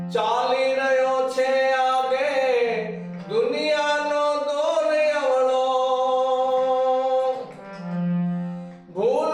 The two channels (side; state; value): both; identical; correlation 1.00